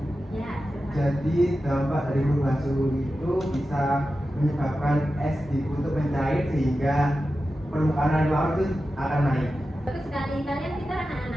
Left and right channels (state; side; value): normal; both; correlation 0.92